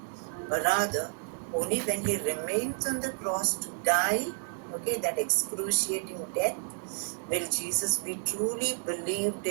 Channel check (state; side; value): silent; left; digital silence